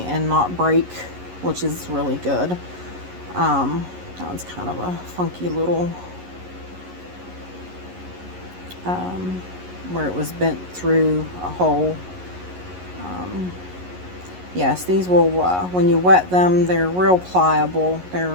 not break, which is really good. That one's kind of a funky little where it was bent through a hole. Yes, these will, when you wet them, they're real pliable. They're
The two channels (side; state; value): left; late; 11 ms